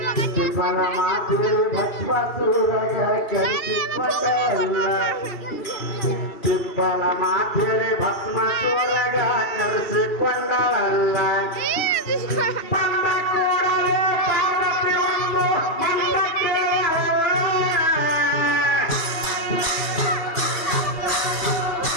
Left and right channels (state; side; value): late; right; 2.7 ms